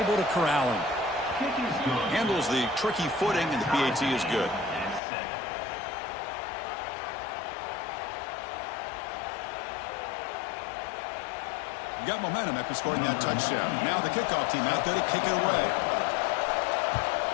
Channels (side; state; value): right; drops out; at 5.0 s